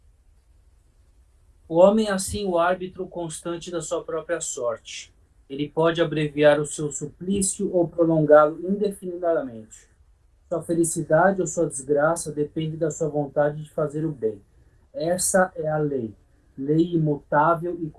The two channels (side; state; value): both; identical; correlation 1.00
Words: O homem é assim o árbitro constante da sua própria sorte. Ele pode abreviar o seu suplício ou prolongá-lo indefinidamente. Sua felicidade ou sua desgraça depende da sua vontade de fazer o bem. Essa é a lei, lei imutável e